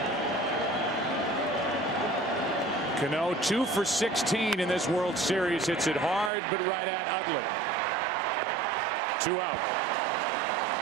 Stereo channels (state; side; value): drops out; left; at 6.3 s